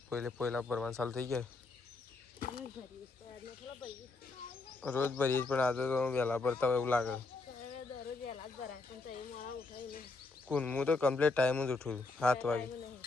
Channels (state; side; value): quieter; right; 3.6 dB